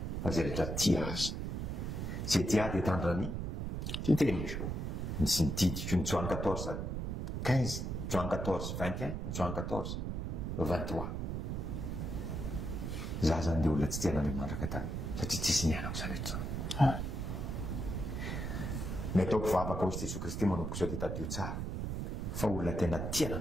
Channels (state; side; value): noise; right; rumble, 3 dB below the sound